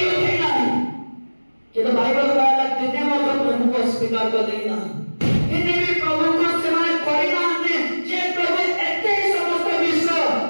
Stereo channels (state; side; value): inverted; both; correlation -1.00